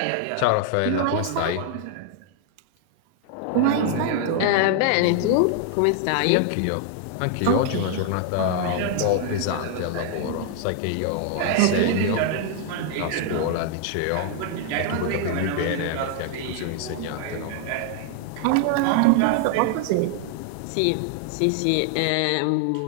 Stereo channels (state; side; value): different; both; correlation 0.00